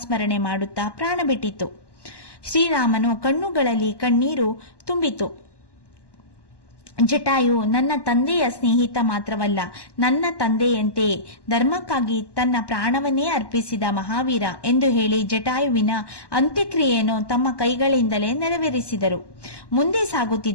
ಮಾಡುತ್ತಾ ಪ್ರಾಣ ಬಿಟ್ಟಿತು. ಶ್ರೀರಾಮನು ಕಣ್ಣುಗಳಲ್ಲಿ ಕಣ್ಣೀರು ತುಂಬಿತು. ಜಟಾಯು ನನ್ನ ತಂದೆಯ ಸ್ನೇಹಿತ ಮಾತ್ರವಲ್ಲ, ನನ್ನ ತಂದೆಯಂತೆಯೇ ಧರ್ಮಕ್ಕಾಗಿ ತನ್ನ ಪ್ರಾಣವನ್ನೇ ಅರ್ಪಿಸಿದ ಮಹಾವೀರ ಎಂದು ಹೇಳಿ ಜಟಾಯುವಿನ ಅಂತ್ಯಕ್ರಿಯೆಯನ್ನು ತಮ್ಮ ಕೈಗಳಿಂದಲೇ ನೆರವೇರಿಸಿದರು. ಮುಂದೆ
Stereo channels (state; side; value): late; right; 1.1 ms